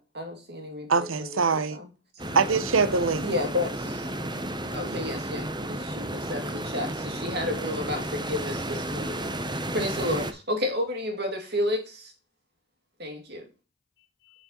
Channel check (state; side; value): normal; both; correlation -0.07